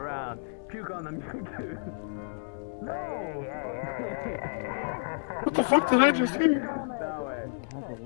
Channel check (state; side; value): silent; right; 58 dB below the other